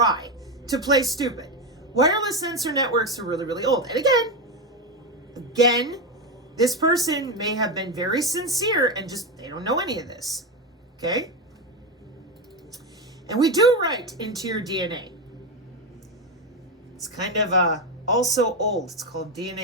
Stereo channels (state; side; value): normal; both; correlation 0.12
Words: to play stupid. Wireless sensor networks are really, really old. And again, This person may have been very sincere and just, they don't know any of this. Okay? And we do write into your DNA. It's kind of also old. It's called